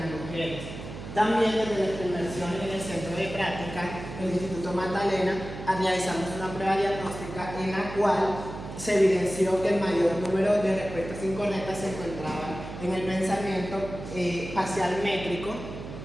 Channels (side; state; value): right; noise; hum, 10 dB below the sound